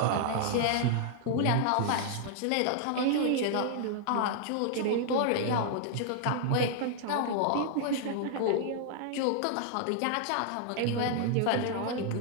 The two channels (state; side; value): different; both; correlation -0.01